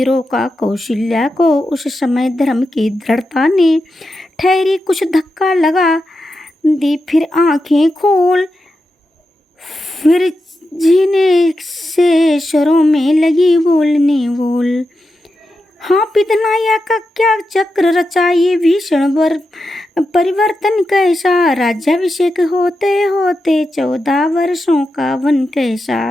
रोका कौशल्या को, उस समय धर्म की दृढ़ता ने ठहरी कुछ धक्का लगा दी, फिर आंखें खोल, फिर जीने से स्वरों में लगी बोलने बोल। हाँ पितनाया का क्या चक्र रचा ये भीषण परिवर्तन कैसा, राज्याभिषेक होते होते 14 वर्षों का वन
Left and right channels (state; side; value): normal; both; correlation 0.89